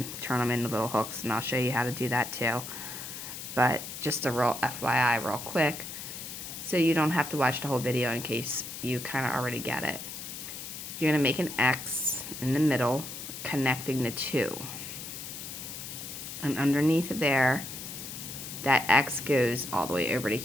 turn them into little hooks, and I'll show you how to do that too. But just a real FYI real quick, so you don't have to watch the whole video in case you kind of already get it. You're going to make an X in the middle, connecting the two. And underneath there, that X goes all the way over to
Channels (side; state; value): left; noise; hiss, 9 dB below the sound